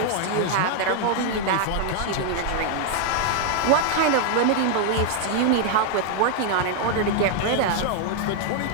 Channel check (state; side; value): different; both; correlation 0.00